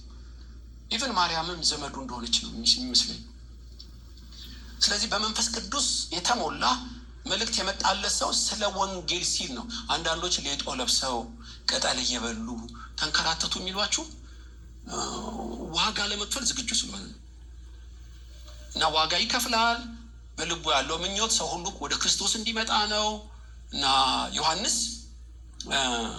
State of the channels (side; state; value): both; identical; correlation 1.00